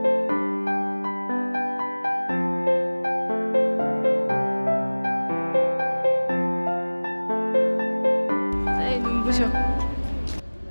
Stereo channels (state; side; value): inverted; both; correlation -1.00